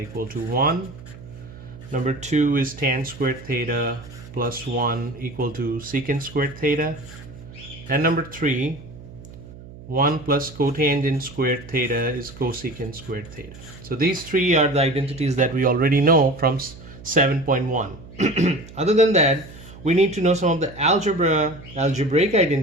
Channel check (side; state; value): right; noise; hum, 17 dB below the sound